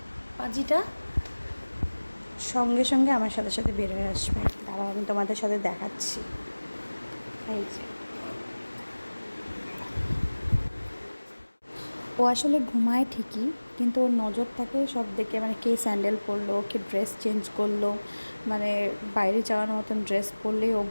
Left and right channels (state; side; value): inverted; both; correlation -1.00